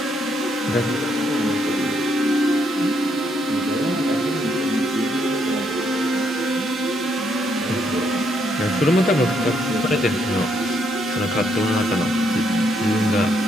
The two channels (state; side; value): normal; both; correlation 0.74